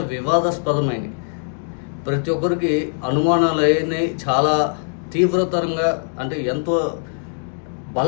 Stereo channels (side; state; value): right; silent; digital silence